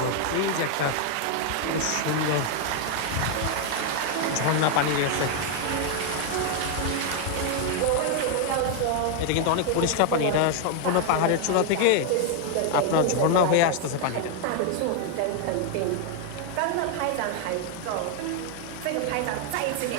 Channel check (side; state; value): both; different; correlation 0.00